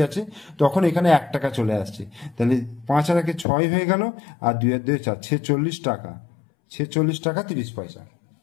যাচ্ছে তখন এখানে 1 টাকা চলে আসছে। তাহলে 5 আর 1 6 হয়ে গেল, আর 2 আর 2 4, 46 টাকা, 46 টাকা 30 পয়সা।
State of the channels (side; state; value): right; drops out; at 3.5 s